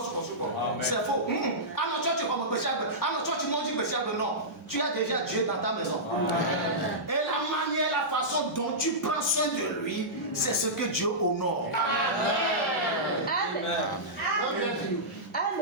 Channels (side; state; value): both; normal; correlation -0.15